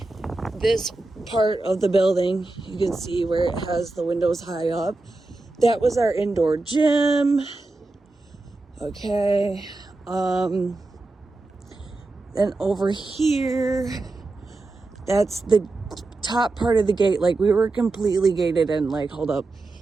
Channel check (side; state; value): left; quieter; 3.2 dB